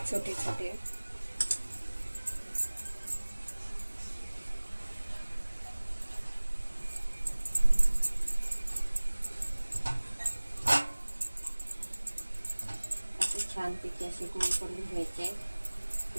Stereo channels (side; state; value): both; inverted; correlation -1.00